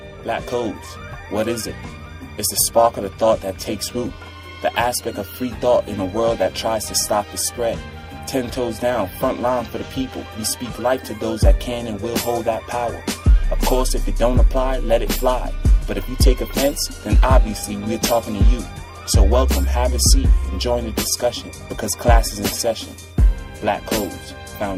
Black codes, what is it? It's the spark of the thought that takes root, the aspect of free thought in a world that tries to stop the spread. 10 toes down, front line for the people. We speak life to those that can and will hold that power. Of course, if it don't apply, let it fly. But if you take offense, then obviously we're talking to you. So welcome, have a seat, and join the discussion, because class is in session. Black Codes,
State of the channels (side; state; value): both; identical; correlation 1.00